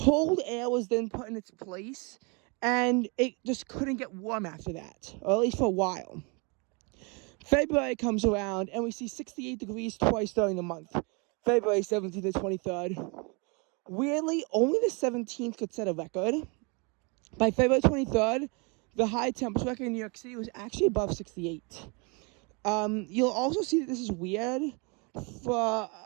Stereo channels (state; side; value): quieter; left; 32.0 dB